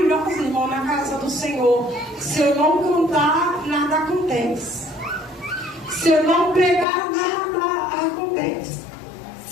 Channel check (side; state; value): right; drops out; at 6.9 s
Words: irmão, na casa do Senhor. Se eu não cantar, nada acontece. Se eu não pregar, nada acontece.